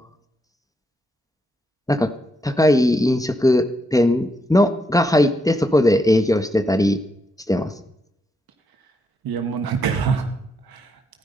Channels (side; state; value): both; normal; correlation 0.80